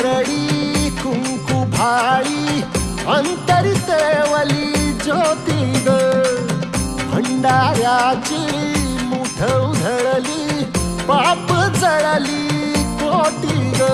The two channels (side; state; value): both; identical; correlation 1.00